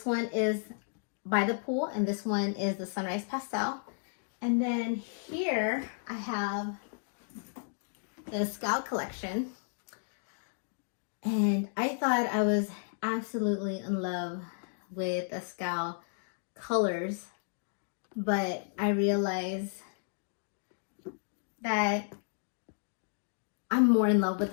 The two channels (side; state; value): right; silent; digital silence